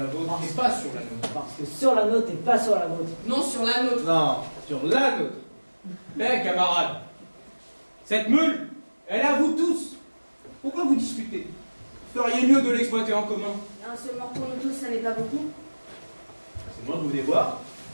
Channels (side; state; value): both; inverted; correlation -1.00